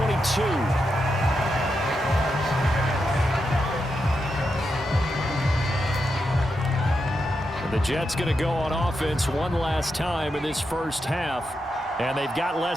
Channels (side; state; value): both; normal; correlation 0.86